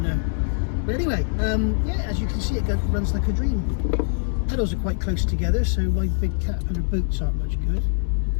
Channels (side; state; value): right; silent; digital silence